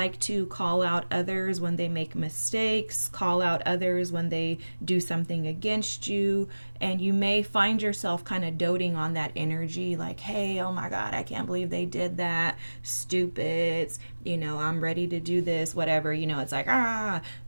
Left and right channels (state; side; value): inverted; both; correlation -1.00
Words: to call out others when they make mistakes, call out others when they do something against you, and you may find yourself kind of doting on that energy, like, hey, oh my God, I can't believe they did that, stupids, I'm ready to do this, whatever, it's like,